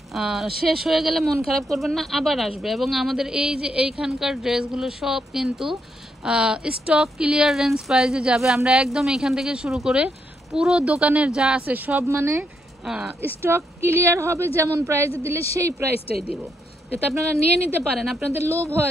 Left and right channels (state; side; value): normal; both; correlation 0.78